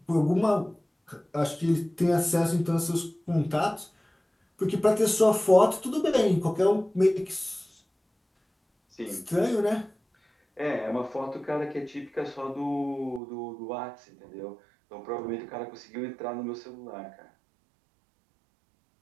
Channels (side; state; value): left; drops out; at 13.2 s